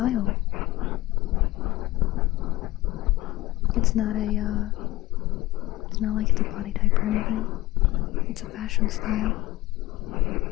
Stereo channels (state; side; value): quieter; right; 17.5 dB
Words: It's not a, it's not like it's a body type or anything. It's a fashion style.